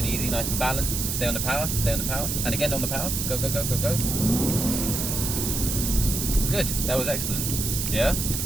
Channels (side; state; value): right; noise; hiss, 2 dB below the sound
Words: easy, nice and balanced. Stay on the power, stay on the power. And again on the power. Go, go, go, go, go. Good. That was excellent. Yeah?